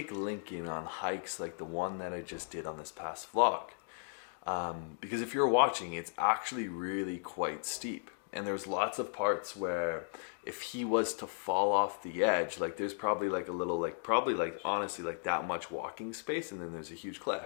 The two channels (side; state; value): right; silent; digital silence